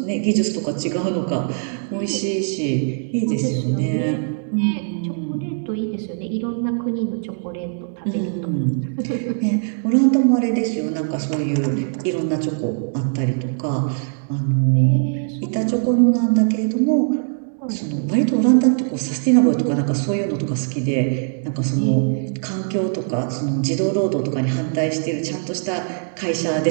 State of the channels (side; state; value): left; silent; digital silence